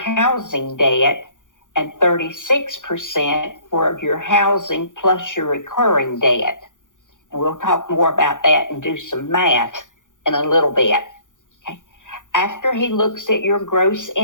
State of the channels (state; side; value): late; right; 0.87 ms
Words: debt and 36% for your housing plus your recurring debt. And we'll talk more about that and do some math in a little bit. Okay. After he looks at your gross